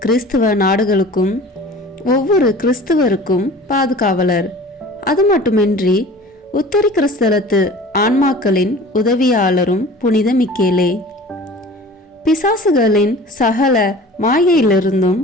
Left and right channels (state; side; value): normal; both; correlation 0.43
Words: கிறிஸ்துவ நாடுகளுக்கும் ஒவ்வொரு கிறிஸ்துவருக்கும் பாதுகாவலர். அது மட்டுமின்றி உத்தரி கிறிஸ்தலத்து ஆன்மாக்களின் உதவியாளரும் புனித மிக்கேலே. பிசாசுகளின் சகல மாயையிலிருந்தும்